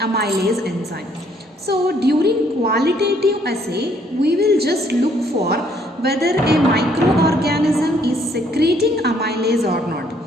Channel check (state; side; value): normal; both; correlation 0.66